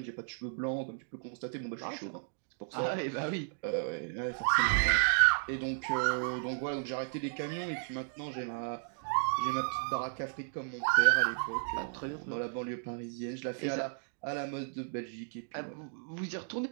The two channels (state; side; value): silent; left; digital silence